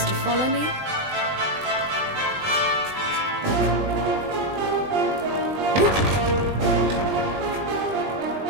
to follow me.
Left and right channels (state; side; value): late; left; 20 ms